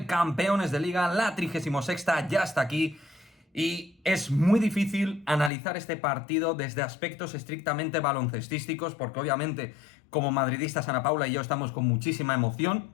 campeones de Liga. La 36ª ya está aquí. Y es muy difícil analizar este partido desde aspectos estrictamente baloncestísticos, porque obviamente como madridistas Ana Paula y yo estamos con muchísima emoción.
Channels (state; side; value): drops out; right; at 5.5 s